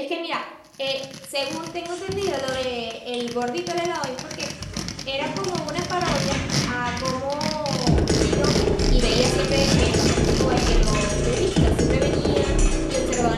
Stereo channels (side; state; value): both; identical; correlation 1.00